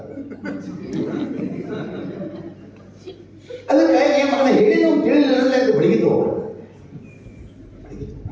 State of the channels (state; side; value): identical; both; correlation 1.00